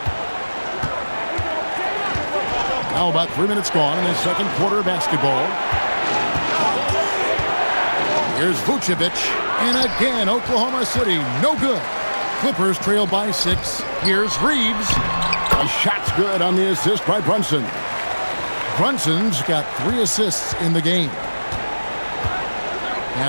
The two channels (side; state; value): both; inverted; correlation -1.00